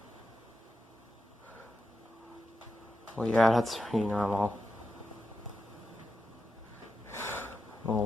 Well, yeah, that's pretty normal.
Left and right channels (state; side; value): normal; both; correlation 0.88